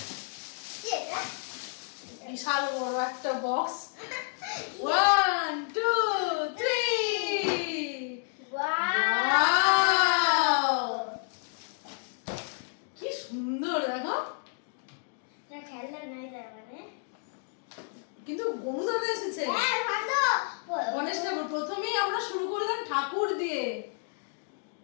বিশাল বড় একটা বক্স। 1 2 3 ওয়াও, কি সুন্দর দেখো। কিন্তু গণেশ এসেছে। গণেশ ঠাকুর। প্রথমেই আমরা শুরু করলাম ঠাকুর দিয়ে।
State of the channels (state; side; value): silent; right; 58 dB below the other